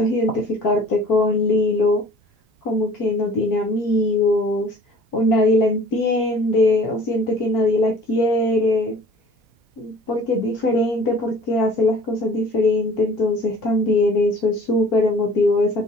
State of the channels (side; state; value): both; normal; correlation 0.49